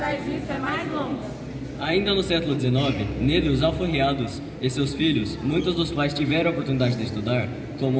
disso é mais longa. Ainda no século XIX, negros alforriados e seus filhos, muitos dos quais tiveram a oportunidade de estudar, como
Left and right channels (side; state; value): both; identical; correlation 1.00